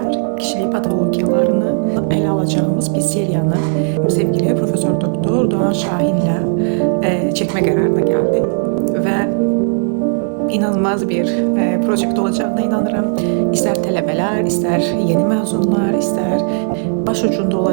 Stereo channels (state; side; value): silent; left; digital silence